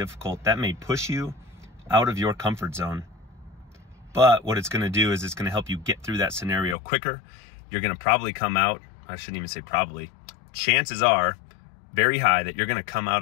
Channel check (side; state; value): right; drops out; at 6.8 s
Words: That may push you out of your comfort zone. But what it's going to do is it's going to help you get through that scenario quicker. You're going to probably come out, I shouldn't even say probably, chances are very high that you're going to come out